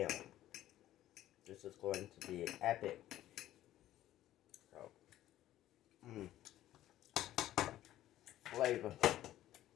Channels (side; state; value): right; quieter; 13.6 dB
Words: own. This is going to be epic. So, flavor.